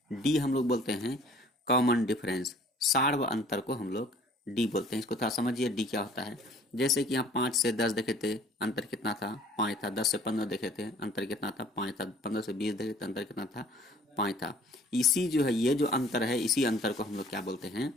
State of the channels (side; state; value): both; normal; correlation 0.53